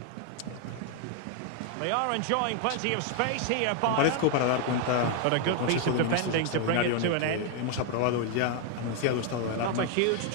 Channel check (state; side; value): different; both; correlation 0.00